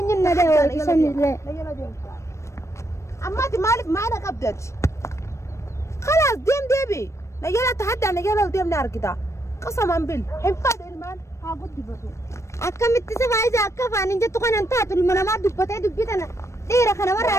ده ولا سنة ده يلا ديبي أما دي مالك ما أنا قبضت خلاص ديم ديبي يلا تحدى أنا يلا ديم نار كده قسما بال هن فارو المان هاقول دبتو أكم متسف عايزة أكف عن إنجت تكون أنت تقول ما دبتة دبتنا ديرة خنا مرة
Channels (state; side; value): late; right; 0.14 ms